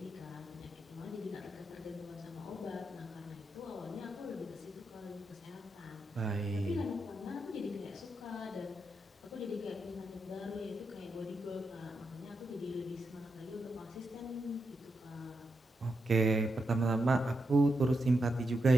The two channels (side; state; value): both; normal; correlation 0.85